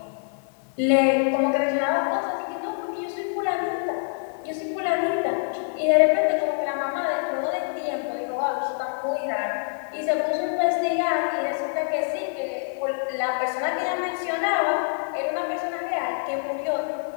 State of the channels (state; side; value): silent; right; digital silence